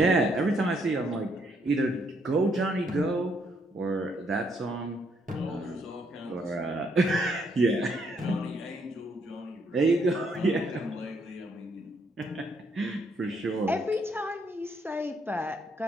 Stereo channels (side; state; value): both; normal; correlation 0.72